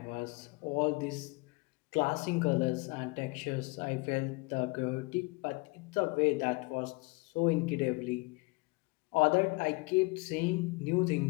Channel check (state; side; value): quieter; right; 26.5 dB